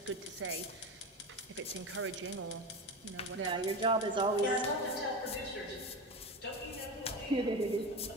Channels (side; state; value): both; normal; correlation 0.23